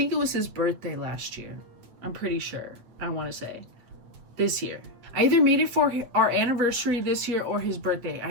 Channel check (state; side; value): late; left; 8.7 ms